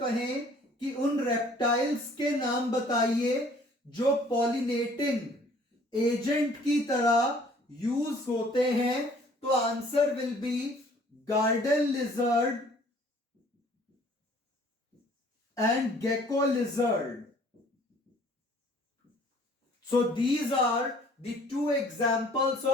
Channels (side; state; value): both; normal; correlation 0.56